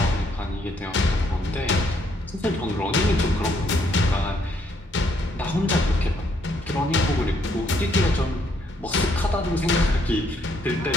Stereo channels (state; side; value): normal; both; correlation 0.70